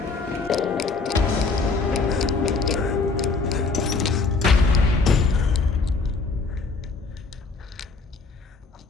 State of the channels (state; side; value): quieter; right; 4.2 dB